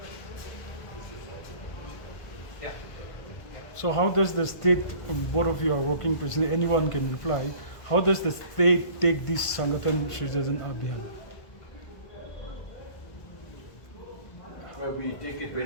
Yeah. So how does the state, both of you are working president, anyone can reply, how does the state take this Sangathan Srijan Abhiyan? Well, we take it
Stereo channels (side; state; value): right; late; 1.5 ms